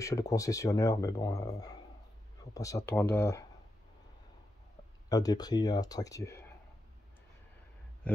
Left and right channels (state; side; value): normal; both; correlation 0.86